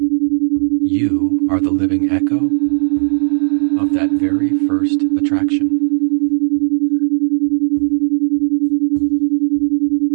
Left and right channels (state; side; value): silent; left; 70 dB below the other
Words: You are the living echo of that very first attraction.